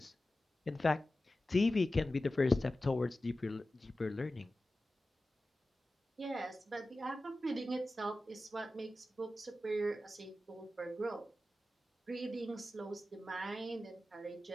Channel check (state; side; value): normal; both; correlation 0.94